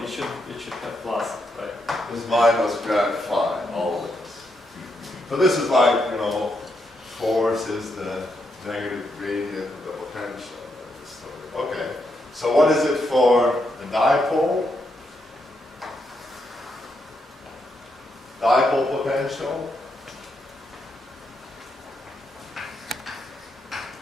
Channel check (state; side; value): normal; both; correlation 0.80